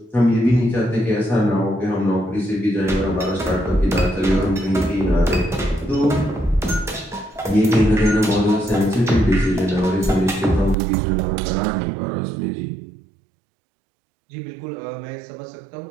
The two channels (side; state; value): left; drops out; at 10.8 s